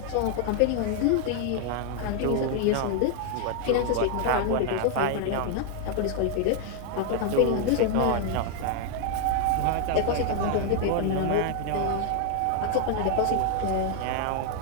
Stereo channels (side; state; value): both; different; correlation 0.00